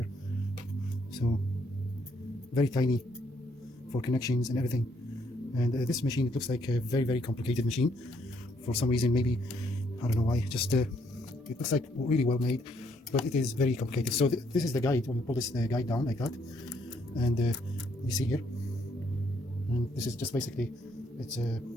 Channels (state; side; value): normal; both; correlation 0.70